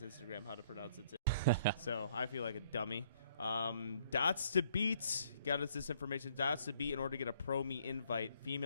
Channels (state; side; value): inverted; both; correlation -0.64